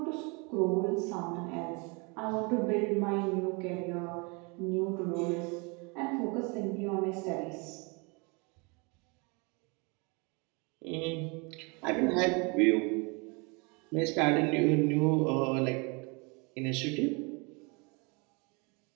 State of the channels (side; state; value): left; quieter; 30.6 dB